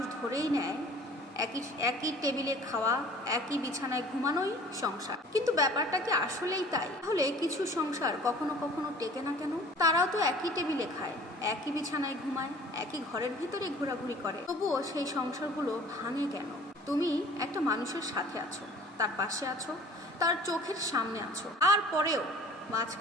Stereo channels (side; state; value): both; normal; correlation 0.48